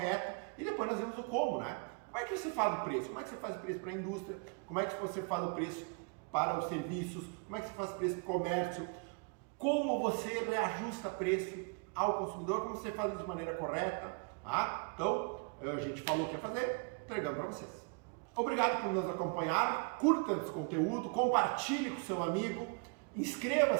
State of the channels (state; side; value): quieter; left; 36.0 dB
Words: e depois nós vimos o como, né? Como é que você faz o preço? Como é que você faz o preço para a indústria? Como é que você faz o preço para os serviços? Como é que você faz o preço para o comércio? Como você reajusta preço ao consumidor? Como você faz isso de maneira correta? Tá? Então, a gente falou o que ia fazer, entregamos para vocês. Obrigado por nos acompanhar, curta esse conteúdo, compartilhe com seu amigo,